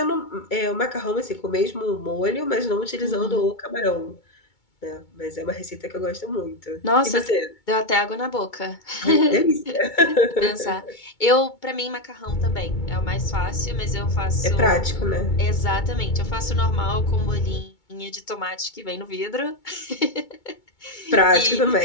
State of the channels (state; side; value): late; right; 2.2 ms